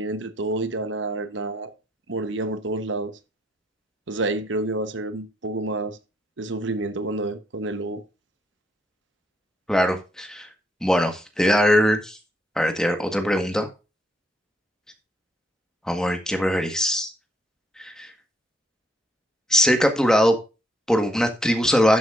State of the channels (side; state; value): both; normal; correlation 0.72